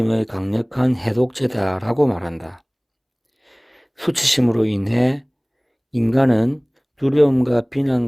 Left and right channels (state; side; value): identical; both; correlation 1.00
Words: 강력한 해독제다라고 말한다. 수치심으로 인해 인간은 두려움과